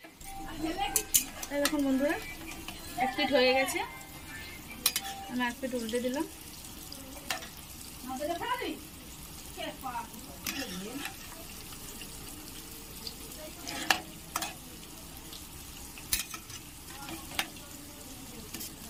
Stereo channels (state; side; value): identical; both; correlation 1.00